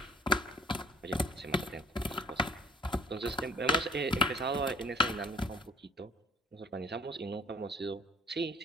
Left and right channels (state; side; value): normal; both; correlation 0.55